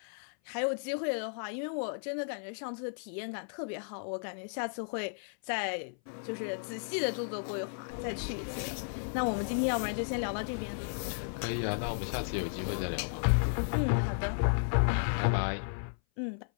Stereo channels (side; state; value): right; silent; 55 dB below the other